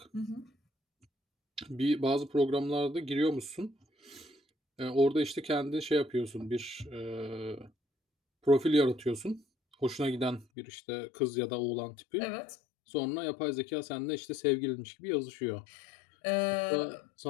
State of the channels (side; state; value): right; drops out; at 10.5 s